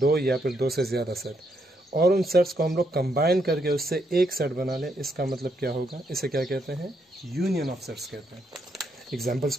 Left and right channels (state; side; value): normal; both; correlation 0.77